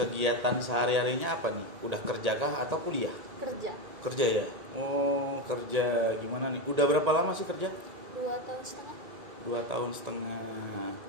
sehari-harinya apa nih? Udah kerja kah atau kuliah? Kerja. Kerja ya? Oh kerja gimana nih? Udah berapa lama sih kerja? 2 tahun setengah. 2 tahun setengah.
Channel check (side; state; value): left; late; 1.9 ms